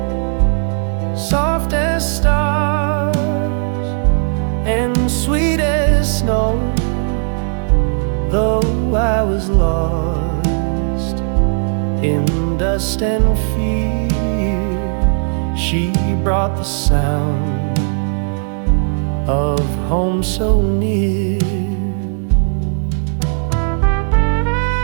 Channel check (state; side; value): silent; left; 56 dB below the other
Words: soft as stars and sweet as snow. Though I was lost in dust and fear, she brought the sound of home so near.